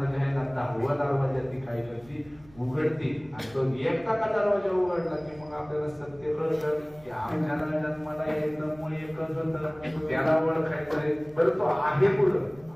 जे आहे ना 10वा दरवाजा ती काय करते उघडते आणि तो एकदा का दरवाजा उघडला की मग आपल्याला सत्य कळतं की आपल्याला जन्माला यायचं मूळ एकच होतं, त्याला ओळखायचंय बरं तो आहे कुठं.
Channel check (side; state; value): right; noise; rumble, 25 dB below the sound